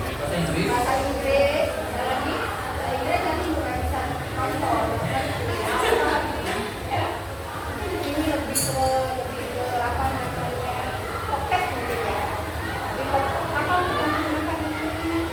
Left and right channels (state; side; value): identical; both; correlation 1.00